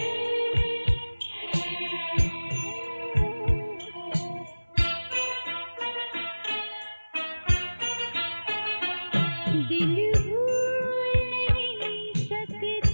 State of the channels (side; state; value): both; inverted; correlation -1.00